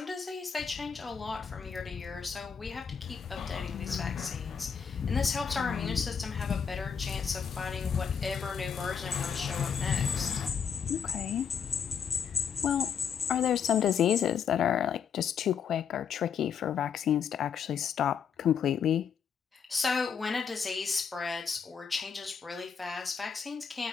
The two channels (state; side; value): quieter; right; 7.0 dB